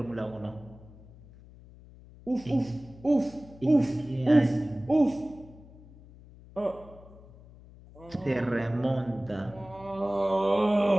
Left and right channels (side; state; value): left; noise; hum, 21 dB below the sound